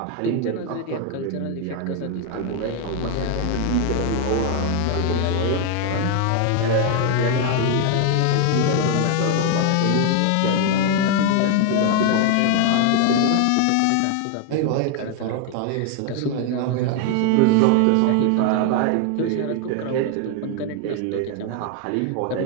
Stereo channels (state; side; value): different; both; correlation 0.01